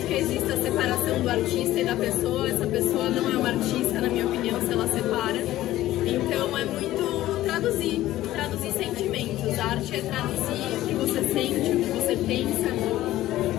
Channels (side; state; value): right; quieter; 14.9 dB